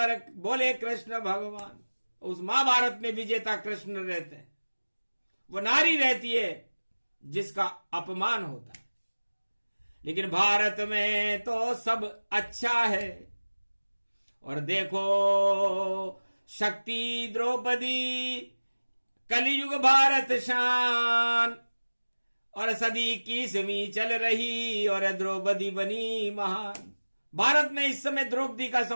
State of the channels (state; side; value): inverted; both; correlation -1.00